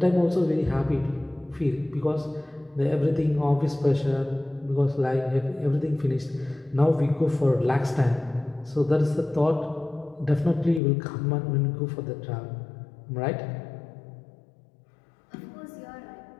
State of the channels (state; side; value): drops out; right; at 10.8 s